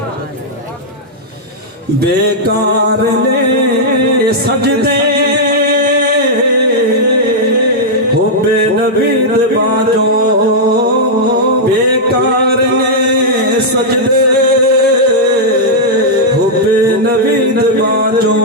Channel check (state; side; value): normal; both; correlation -0.07